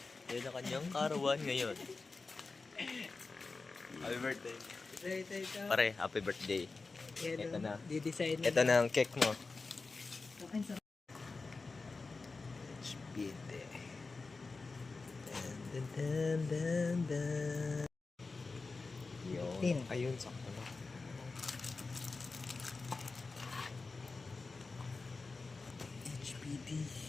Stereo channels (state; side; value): quieter; right; 4.0 dB